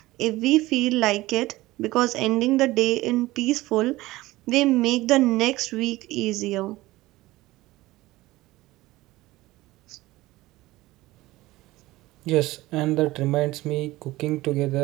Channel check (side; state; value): left; quieter; 18.3 dB